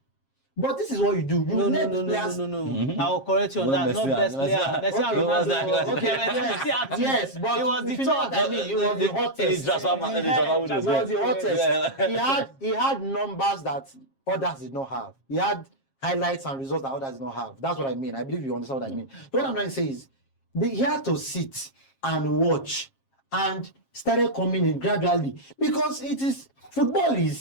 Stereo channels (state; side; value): late; right; 7.4 ms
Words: But this is what you do. No. I will correct you on that. Not best player. Messi and Ronaldo. Okay, yes, but it was the top. top. It was the hottest. It was the hottest. He had numbers that others did not have. He had highlights and results that others did not have. That's what I mean. I believe you understand what I mean. What I'm trying to say is, he had to sit and watch and started coming in gradually, because football